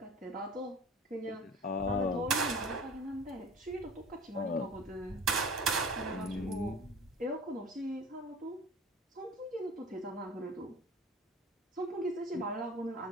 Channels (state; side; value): normal; both; correlation 0.40